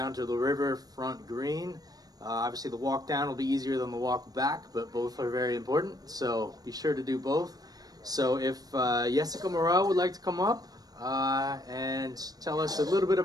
to the Riverfront Green. Obviously the walk down will be easier than the walk back, but both are very important, so be sure to do both. So if Jessica Morel would like to come up and tell us a little bit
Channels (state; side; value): late; left; 0.19 ms